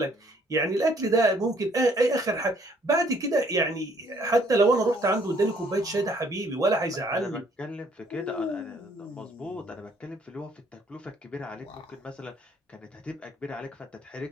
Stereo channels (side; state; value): both; normal; correlation 0.63